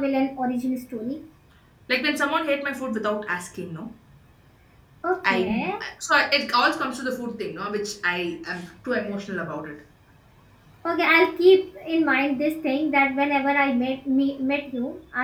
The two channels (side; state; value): both; identical; correlation 1.00